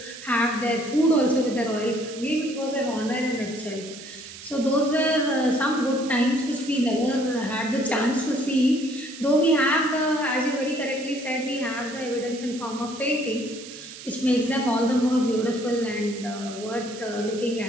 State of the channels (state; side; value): noise; right; hiss, 14 dB below the sound